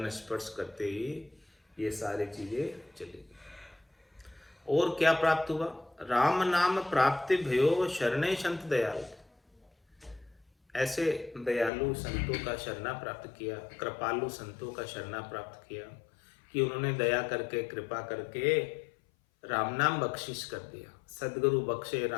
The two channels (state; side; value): drops out; right; at 11.7 s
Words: स्पर्श करते ही ये सारी चीजें चली गई। और क्या प्राप्त हुआ? राम नाम प्राप्ति भयो शरणे संत दयाल। ऐसे दयालु संतों का शरणा प्राप्त किया, कृपालु संतों का शरणा प्राप्त किया कि उन्होंने दया करके, कृपा करके राम नाम बख्शिश कर दिया। सदगुरु बख्शे